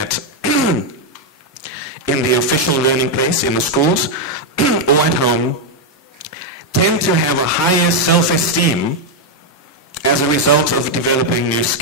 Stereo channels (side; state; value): both; normal; correlation 0.01